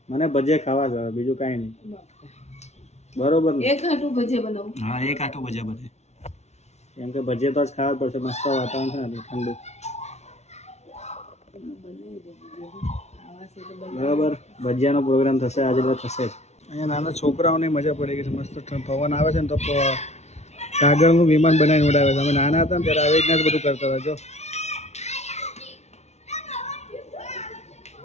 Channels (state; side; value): late; right; 0.32 ms